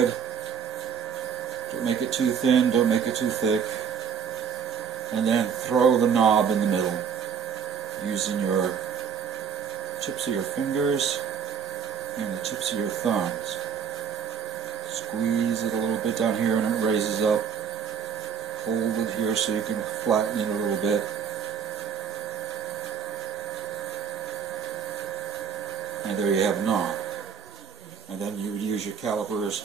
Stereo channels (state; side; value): quieter; left; 7.3 dB